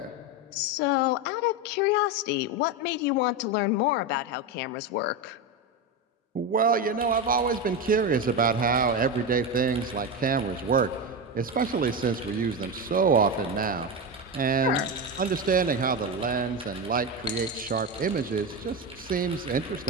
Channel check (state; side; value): normal; both; correlation 0.16